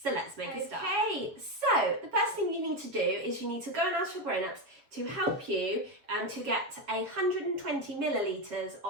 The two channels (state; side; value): late; left; 7.2 ms